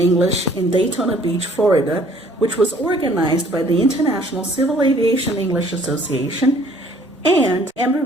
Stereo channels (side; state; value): both; normal; correlation 0.58